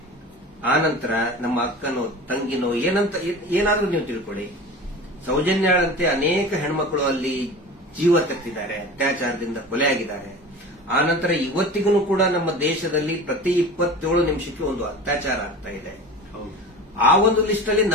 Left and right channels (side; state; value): both; normal; correlation 0.35